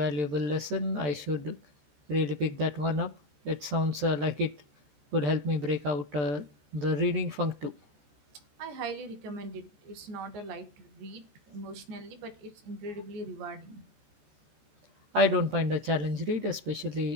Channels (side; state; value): left; late; 14 ms